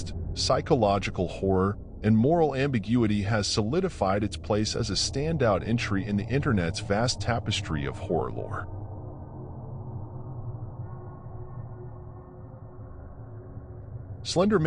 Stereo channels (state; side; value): identical; both; correlation 1.00